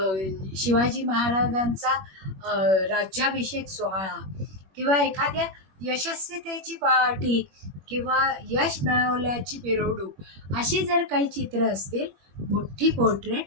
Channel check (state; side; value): late; left; 21 ms